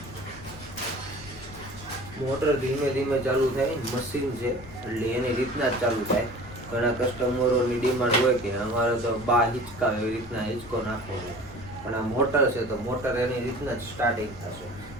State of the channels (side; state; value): left; noise; rumble, 18 dB below the sound